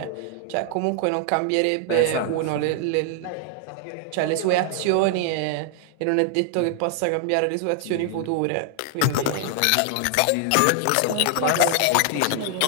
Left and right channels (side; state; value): both; different; correlation 0.00